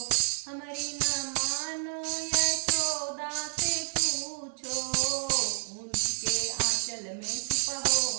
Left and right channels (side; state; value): left; silent; 57 dB below the other